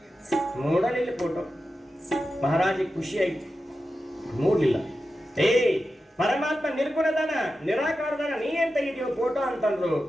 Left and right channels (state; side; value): normal; both; correlation 0.91